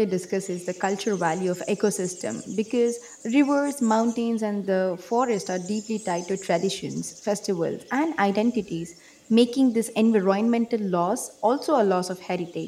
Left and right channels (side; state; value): both; identical; correlation 1.00